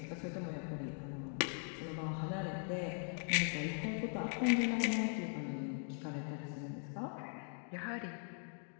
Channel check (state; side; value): silent; right; 51 dB below the other